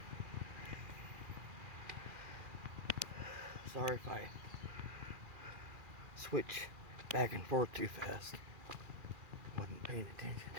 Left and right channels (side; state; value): left; late; 2.4 ms